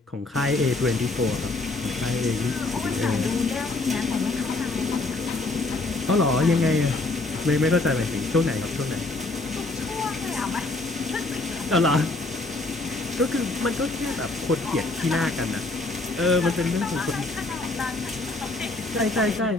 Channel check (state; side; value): quieter; right; 3.1 dB